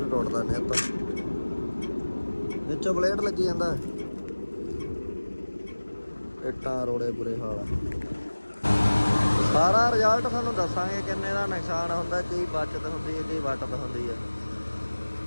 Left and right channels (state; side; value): inverted; both; correlation -1.00